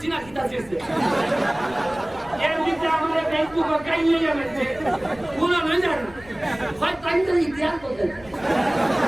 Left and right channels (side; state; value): left; noise; rumble, 22 dB below the sound